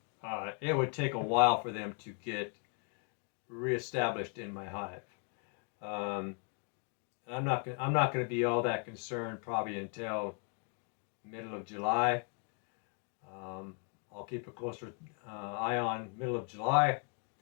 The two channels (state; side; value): quieter; right; 39.9 dB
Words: it would take a while for them to get reestablished in my hive. I'm not going to be all that concerned probably until middle of July. I'll keep a closer eye on middle of July.